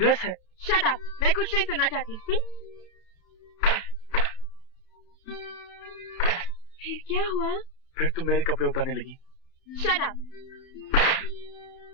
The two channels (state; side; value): late; right; 31 ms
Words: है। शट अप, मैं कुछ नहीं सुनना चाहती। फिर क्या हुआ? फिर तुम मेरे कपड़े उतारने लगी। Shut up.